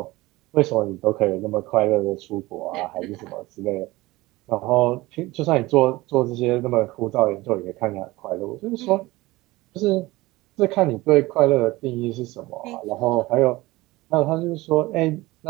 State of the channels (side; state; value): left; quieter; 19.9 dB